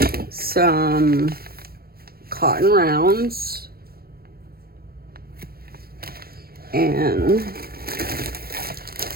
some cotton rounds and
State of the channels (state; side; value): late; left; 0.44 ms